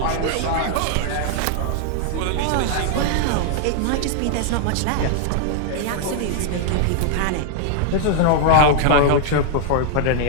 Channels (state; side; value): different; both; correlation -0.01